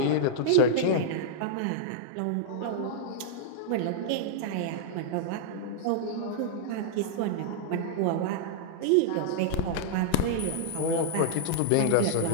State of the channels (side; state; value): both; different; correlation -0.01